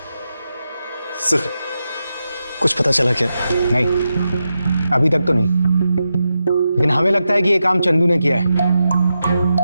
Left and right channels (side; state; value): both; inverted; correlation -0.88